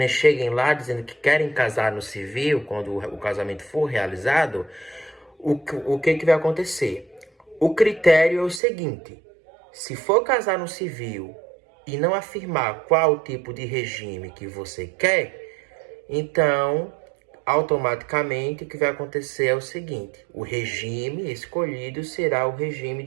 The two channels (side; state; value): left; drops out; at 8.6 s